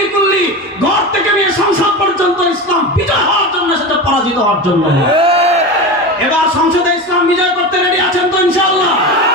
কুল্লি, ঘর থেকে নিয়ে সংসদ পর্যন্ত ইসলাম বিজয় হওয়ার জন্য এসেছে, পরাজিত হওয়ার জন্য? এবার সংসদে ইসলাম বিজয় করতে রেডি আছেন তো ইনশাআল্লাহ?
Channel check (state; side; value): normal; both; correlation 0.25